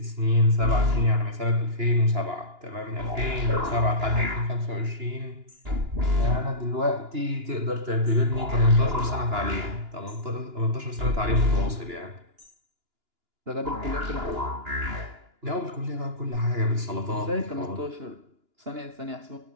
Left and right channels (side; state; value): left; late; 2.9 ms